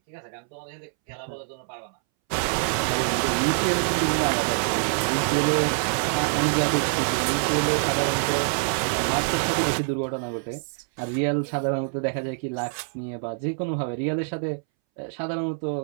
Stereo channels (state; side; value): silent; left; 61 dB below the other